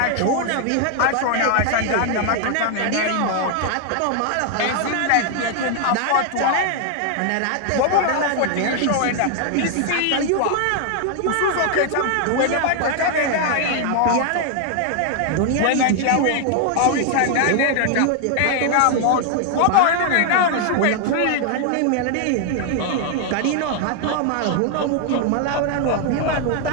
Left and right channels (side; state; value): both; different; correlation 0.00